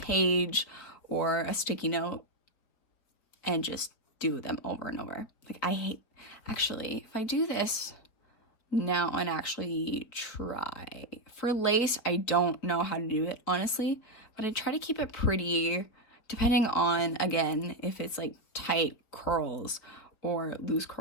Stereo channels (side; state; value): right; late; 4.6 ms